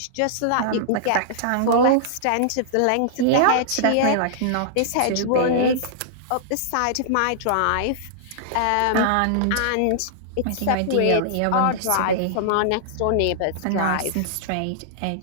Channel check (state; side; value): different; both; correlation -0.01